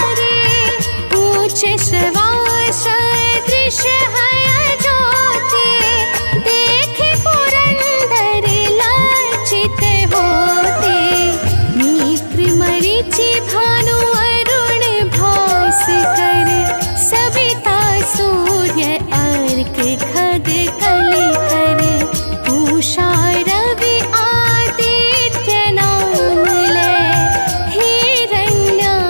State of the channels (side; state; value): both; inverted; correlation -1.00